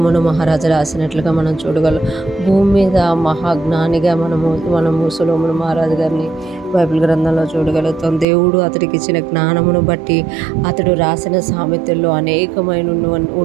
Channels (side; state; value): left; drops out; at 8.2 s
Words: మహారాజు రాసినట్లుగా మనం చూడగలం. భూమి మీద మహాజ్ఞానిగా మనము సొలొమోను మహారాజు గారిని బైబిల్ గ్రంథంలో చూడగలుగుతాం. దేవుడు అతడికి ఇచ్చిన జ్ఞానమును బట్టి అతడు రాసిన సామెతల్లో అనేకమైన